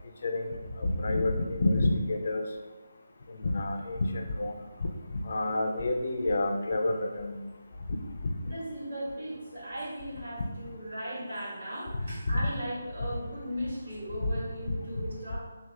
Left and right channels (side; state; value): both; inverted; correlation -0.90